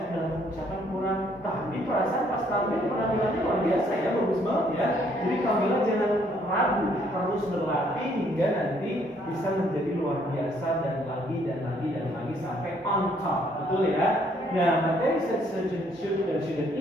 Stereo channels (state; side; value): normal; both; correlation 0.66